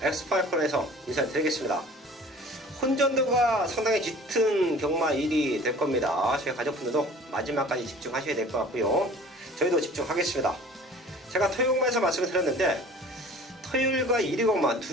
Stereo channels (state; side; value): normal; both; correlation 0.46